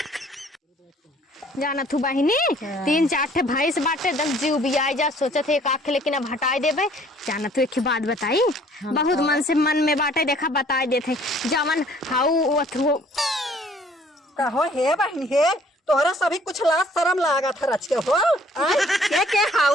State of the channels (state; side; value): normal; both; correlation 0.58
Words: जाना तू बहिनी 3-4 ठे भैंस बाटे 10 जीव भी आ जा सोचत है एक आँख लेकिन अब हटाई देबे। जाना तू एक ही बात बताई, बहुत मन में बाटे देखा बताई देते जमन हाउ अथु कहो हे बहन हे तोहरा सभी कुछ लाज शर्म लागा था रच के हो। आय के